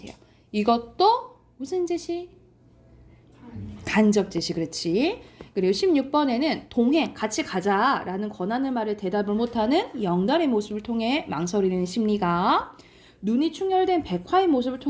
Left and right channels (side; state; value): both; identical; correlation 1.00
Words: 이것도 무슨 제시? 간접 제시, 그렇지. 그리고 16번에는 동행, 같이 가자라는 권하는 말을 대답을 못하는 영달의 모습을 통해 망설이는 심리가 눈이 충혈된 백화의 모습을